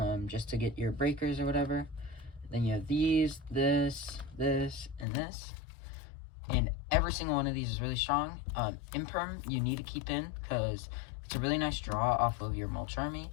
just to get your breakers or whatever. Then you have these, this, and this. And every single one of these is really strong. Imperm, you need to keep in because it's a really nice draw off of your Mulch Army.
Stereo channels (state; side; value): drops out; right; at 5.1 s